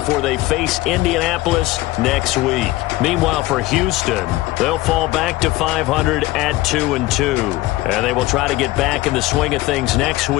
they face Indianapolis next week. Meanwhile, for Houston, they'll fall back to 500 at 2-2. And they will try to get back in the swing of things next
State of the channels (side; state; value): right; quieter; 18.4 dB